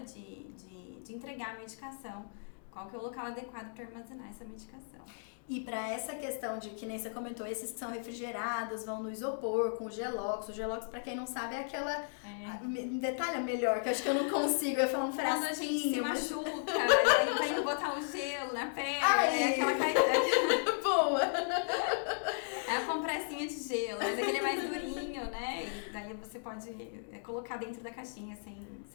entregar a medicação, qual que é o local adequado para armazenar essa medicação. E para essa questão de, que nem você comentou, esses que são refrigerados, vão no isopor, com o Gelox. O Gelox, pra quem não sabe, é aquela... Detalha melhor, que eu acho que eu não consigo. Eu falo um frasquinho. Quando a gente se machuca, aí vai indo botar o gelo na pele, aquela caída. Boa! É a compressinha de gelo, mas aquele é mais durinho, né? E daí você pode colocar dentro da caixinha, sem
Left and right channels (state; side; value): silent; right; digital silence